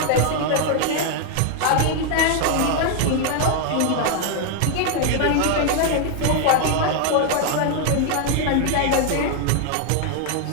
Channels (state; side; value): different; both; correlation 0.00